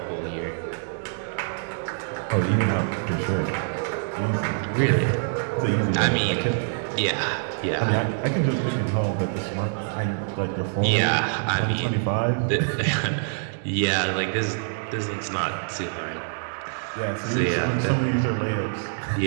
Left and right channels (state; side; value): silent; left; digital silence